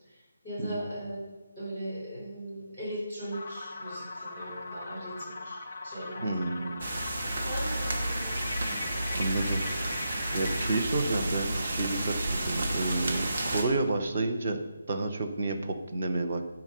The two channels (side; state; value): both; inverted; correlation -0.83